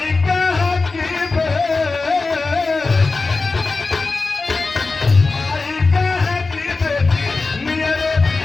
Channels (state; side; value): quieter; right; 3.9 dB